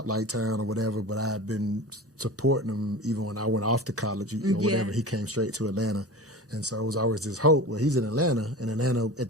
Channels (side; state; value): both; normal; correlation 0.33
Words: town or whatever, but I had been supporting him even when I went off to college or whatever. He came straight to Atlanta. And so it was always this hope. Well, he's in Atlanta, and Atlanta at